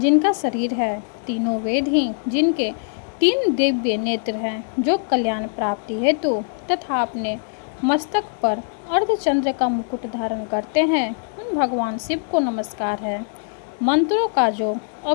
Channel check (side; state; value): right; silent; digital silence